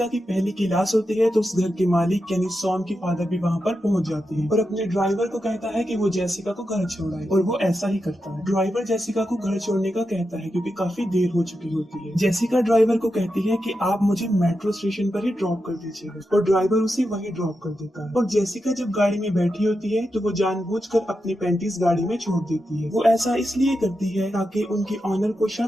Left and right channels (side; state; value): both; normal; correlation 0.88